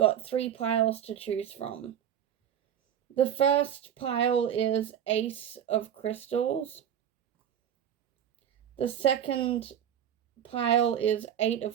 3 piles to choose from. The first pile is Ace of Crystals. The second pile is 8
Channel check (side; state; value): left; quieter; 9.5 dB